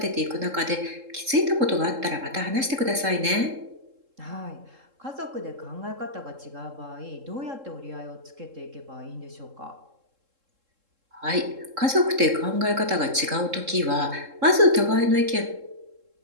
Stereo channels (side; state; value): left; late; 3.7 ms